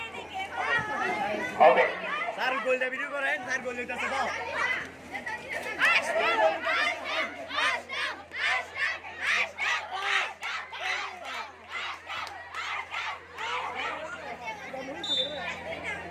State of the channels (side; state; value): both; identical; correlation 1.00